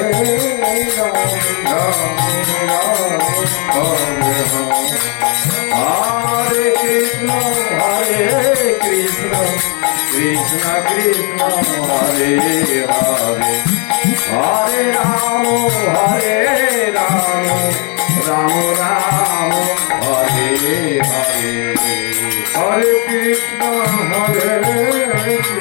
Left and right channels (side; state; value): right; quieter; 36.0 dB